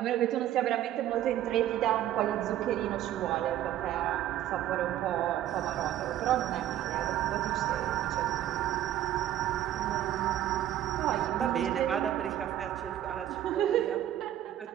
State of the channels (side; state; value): left; quieter; 12.3 dB